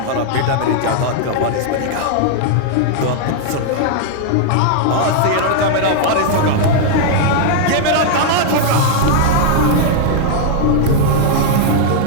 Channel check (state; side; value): different; both; correlation -0.01